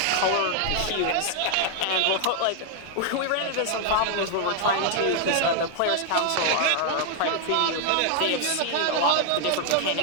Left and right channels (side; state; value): both; different; correlation 0.00